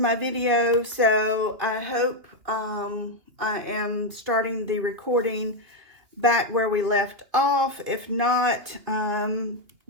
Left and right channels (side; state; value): left; late; 2.9 ms